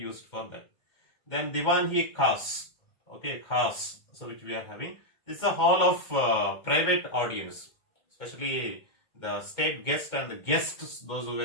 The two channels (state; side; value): late; right; 2.1 ms